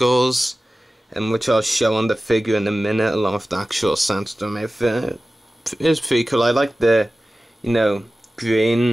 which I'll show on the figure in a minute, along with the actual Sandstorm outfit. It's pretty cool. I like the,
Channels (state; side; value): normal; both; correlation 0.96